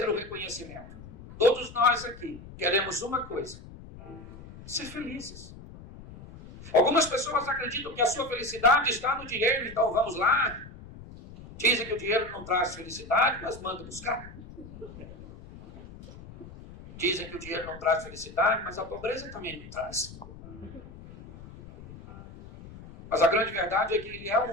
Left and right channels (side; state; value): left; noise; rumble, 16 dB below the sound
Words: o reconhecimento. Todos nós aqui queremos uma coisa: ser felizes. Algumas pessoas acreditam que a sua felicidade está no dinheiro, então vamos lá. Dizem que o dinheiro não traz felicidade, mas manda buscar. Dizem que o dinheiro não traz felicidade, mas a pobreza também não traz. Mas a grande verdade é que ele é